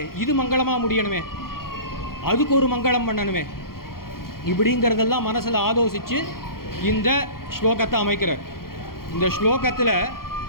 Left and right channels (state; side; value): late; right; 0.92 ms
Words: இது மங்களமாக முடியணுமே, அதுக்கு ஒரு மங்களம் பண்ணணுமே, இப்படிங்கிறதெல்லாம் மனசில் ஆலோசித்து இந்த ஸ்லோகத்தை அமைக்கிறார். இந்த ஸ்லோகத்தில்